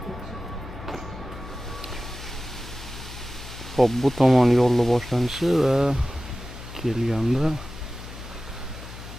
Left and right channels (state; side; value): noise; left; hum, 13 dB below the sound